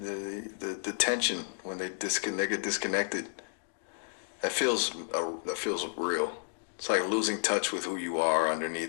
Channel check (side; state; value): right; silent; digital silence